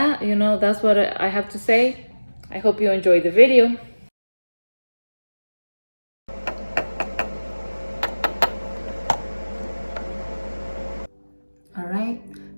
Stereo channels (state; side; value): inverted; both; correlation -1.00